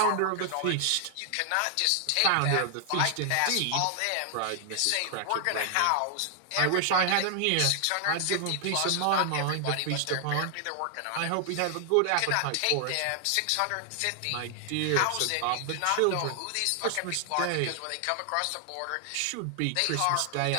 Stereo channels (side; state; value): both; different; correlation 0.00